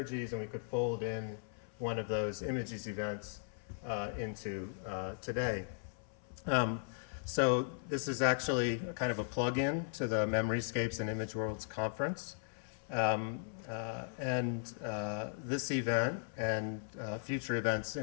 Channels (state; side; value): silent; right; 53 dB below the other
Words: and we could fold in one of those images events into today. So this is actually kind of a plug-in to the Memoryscapes and Image Worlds conference. This event and future events